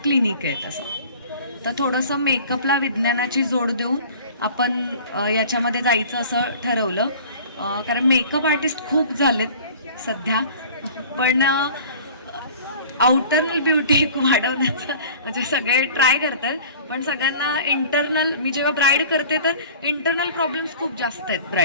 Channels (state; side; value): inverted; both; correlation -0.45